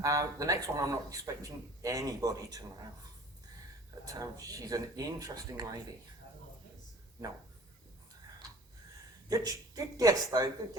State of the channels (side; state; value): both; normal; correlation 0.47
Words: The next one I'm not expecting anybody to know. But she's an interesting lady. No. Good guess though, good